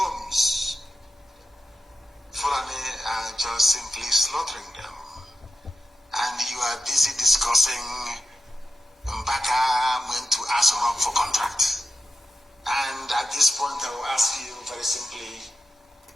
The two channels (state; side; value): normal; both; correlation 0.90